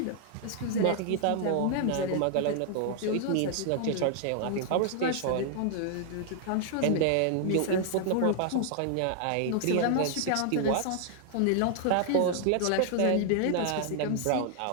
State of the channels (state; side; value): different; both; correlation 0.00